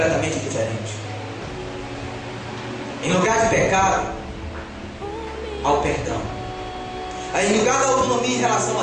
diferente. Em lugar de pecado, ao perdão. Em lugar da autonomia em relação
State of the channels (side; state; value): both; identical; correlation 1.00